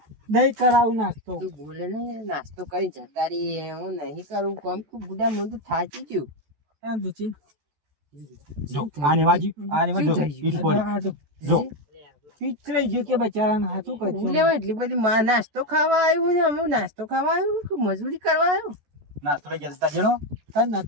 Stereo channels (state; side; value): late; left; 14 ms